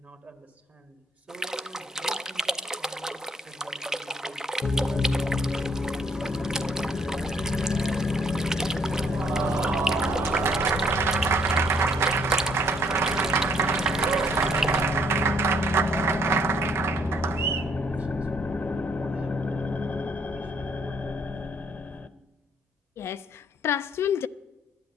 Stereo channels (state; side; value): normal; both; correlation 0.66